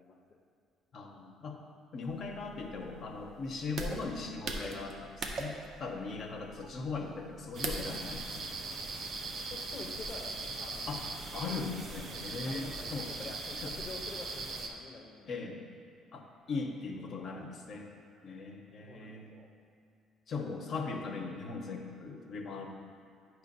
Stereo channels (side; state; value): both; normal; correlation 0.64